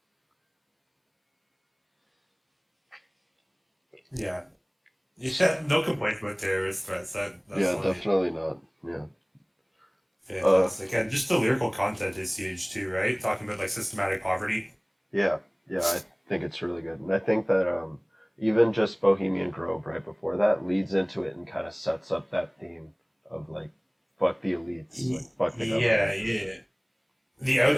Yeah, no complaints about Terrorist Threats. That's funny. Definitely not. Yeah. Fantastic. And just the lyrical content is huge too, right? Talking about like systematic poverty. Yeah, I think it's really good. And I think that even just Bohemian Grove right before that leads into it and kind of sets up that theme of like, fuck the elites, like, fuck the government. Yeah. The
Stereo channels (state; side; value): identical; both; correlation 1.00